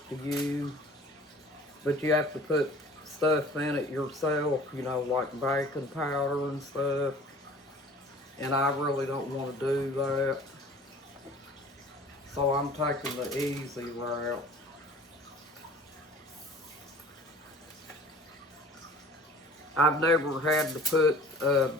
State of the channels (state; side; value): normal; both; correlation 0.47